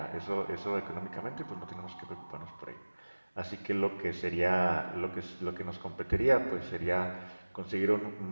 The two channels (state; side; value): inverted; both; correlation -1.00